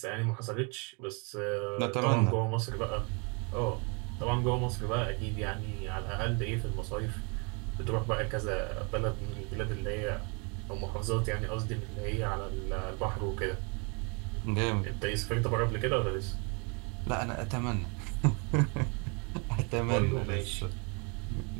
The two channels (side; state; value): left; quieter; 33.5 dB